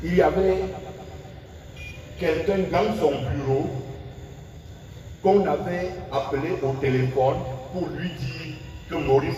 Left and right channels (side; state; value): both; identical; correlation 1.00